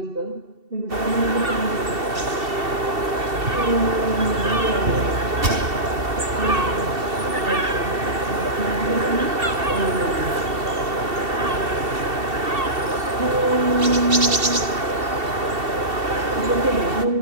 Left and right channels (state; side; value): late; left; 2.7 ms